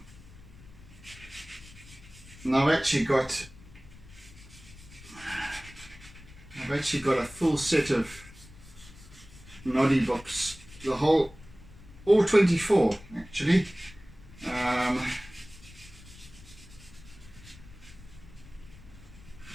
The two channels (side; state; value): left; noise; rumble, 20 dB below the sound